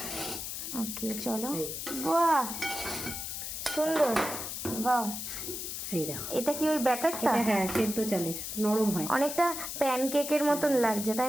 ওকে চলো। এই যে। বাহ, সুন্দর। বাহ, এই দেখো, এটা কি ওই ব্যাটারটা? এটা হ্যাঁ সেদ্ধ চালের, নরম হয়। অনেকটা প্যানকেকের মতন লাগছে, তাই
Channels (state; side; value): noise; left; hiss, 5 dB below the sound